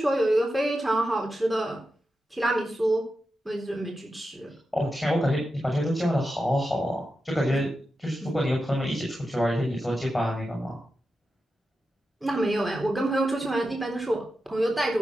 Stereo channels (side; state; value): both; normal; correlation 0.90